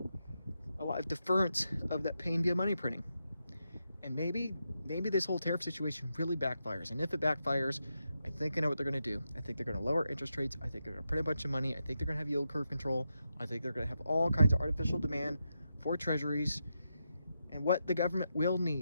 deference of that pain via money printing. And maybe this whole tariff situation really backfires. And if it backfires, I think I know what they're going to do. I think they're going to lower interest rates. I think they're going to print a bunch of money. I think they're going to have yield curve control. I think they're going to have all kinds of artificial demand for treasuries. And what the government will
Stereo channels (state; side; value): inverted; both; correlation -0.86